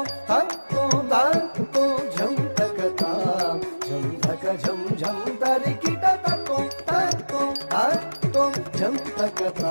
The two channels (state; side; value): inverted; both; correlation -1.00